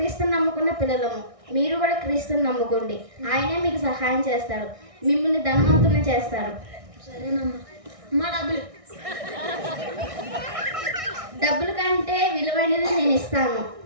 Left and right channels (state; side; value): late; left; 1.6 ms